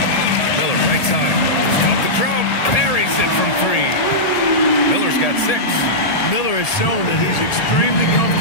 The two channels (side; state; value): right; late; 1.7 ms